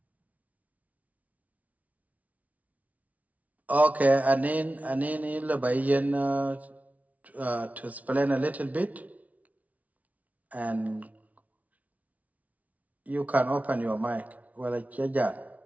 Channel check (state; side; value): late; left; 0.070 ms